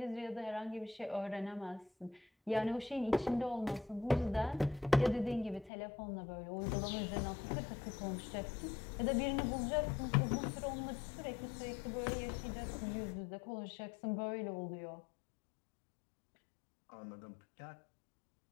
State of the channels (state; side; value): drops out; right; at 5.7 s